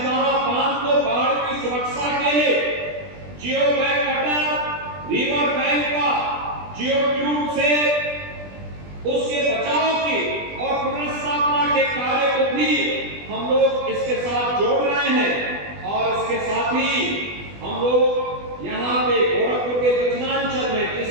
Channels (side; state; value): left; late; 20 ms